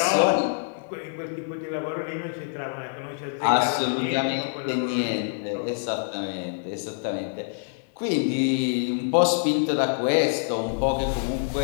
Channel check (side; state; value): right; silent; 57 dB below the other